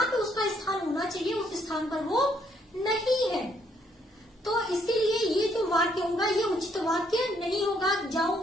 पे उसका स्थान होना चाहिए उस स्थान पर वो नहीं है। तो इसीलिए ये जो वाक्य होगा ये उचित वाक्य नहीं होगा।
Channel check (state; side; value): normal; both; correlation 0.70